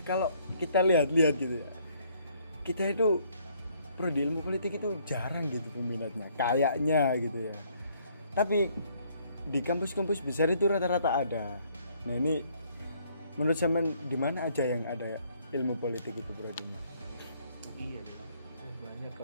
kalau kita lihat gitu ya. Kita itu prodi ilmu politik itu jarang gitu peminatnya. Kayaknya gitu ya. Tapi di kampus-kampus besar itu rata-rata ada. Nah, ini menurut zaman di mana aja yang ada ilmu politik itu prodinya? Iya deh. Banyak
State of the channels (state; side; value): inverted; both; correlation -0.65